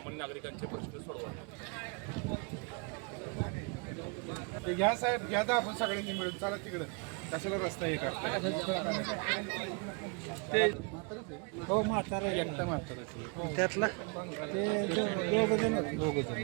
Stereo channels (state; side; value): quieter; left; 34.3 dB